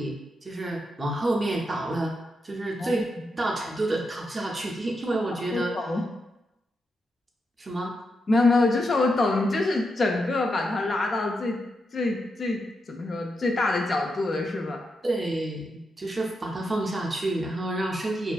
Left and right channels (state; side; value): normal; both; correlation 0.84